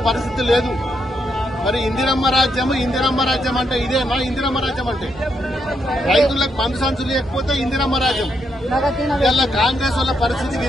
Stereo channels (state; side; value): normal; both; correlation 0.79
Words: పరిస్థితి లేదు. మరి ఇందిరమ్మ రాజ్యం అంటే ఇదేనా? ఇందిరమ్మ రాజ్యం అంటే రైతులకు మందు సంచులు లేకపోతే ఇందిరమ్మ రాజ్యం. ఇలా కాంగ్రెస్ వాళ్ళ పరిస్థితి